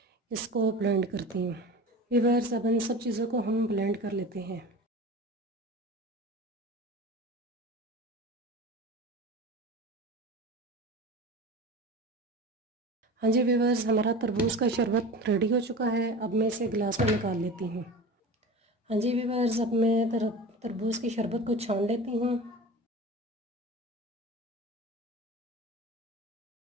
इसको ब्लेंड करती हूँ। व्यूअर्स, अब इन सब चीज़ों को हम ब्लेंड कर लेते हैं। हाँ जी व्यूअर्स, हमारा तरबूज का शरबत रेडी हो चुका है। अब मैं इसे गिलास में निकाल लेती हूँ। हाँ जी व्यूअर्स, अब मैं तरबूज की शरबत को छान लेती हूँ।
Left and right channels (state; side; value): normal; both; correlation 0.33